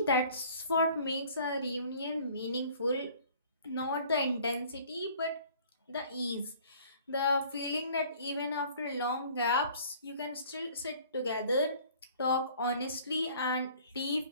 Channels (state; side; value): inverted; both; correlation -0.53